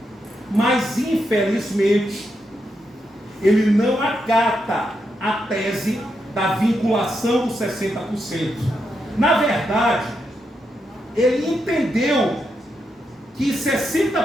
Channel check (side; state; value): both; normal; correlation 0.83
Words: Mas, infelizmente, ele não acata a tese da vinculação dos 60%. Na verdade, ele entendeu que